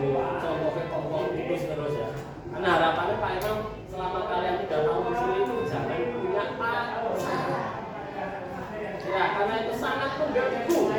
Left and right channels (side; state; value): both; identical; correlation 1.00